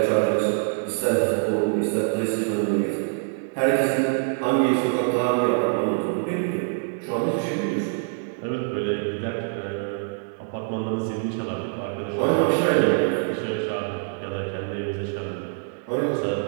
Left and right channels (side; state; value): left; silent; digital silence